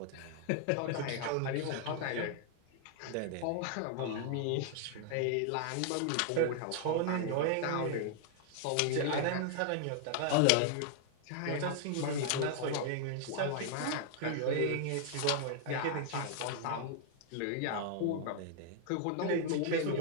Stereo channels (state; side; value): different; both; correlation 0.00